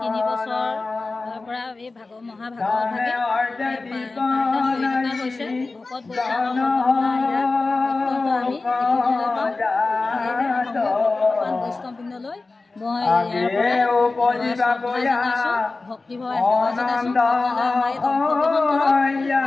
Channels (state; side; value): quieter; right; 3.6 dB